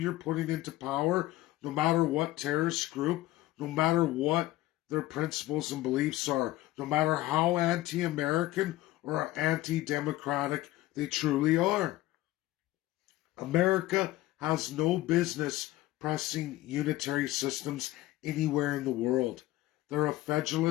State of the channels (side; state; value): right; quieter; 16.6 dB